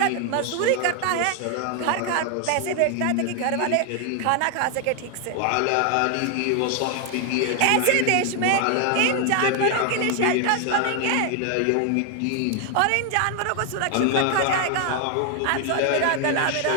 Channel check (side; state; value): both; different; correlation 0.00